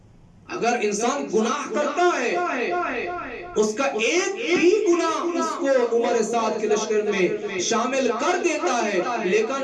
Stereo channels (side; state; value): both; identical; correlation 1.00